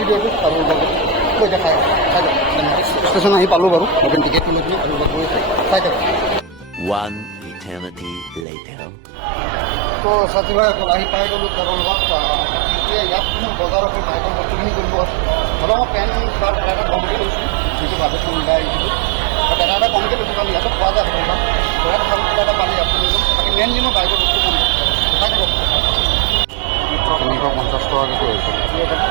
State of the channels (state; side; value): drops out; left; at 8.5 s